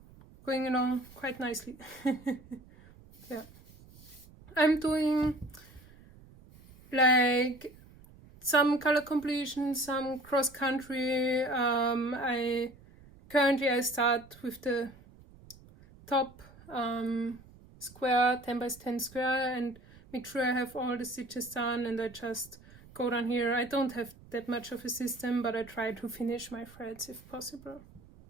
going along quite nicely. Yeah, I'm doing like some color completion, some cross country. I start with the top square, 10 by 10 square, and make sure I have all the stitches done, and I just go down here. I don't have that much of a system, but I try to finish my threads if possible.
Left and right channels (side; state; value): right; noise; rumble, 23 dB below the sound